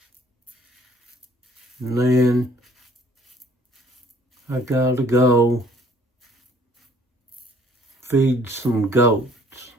And then I gotta go feed some goats.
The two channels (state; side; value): normal; both; correlation 0.59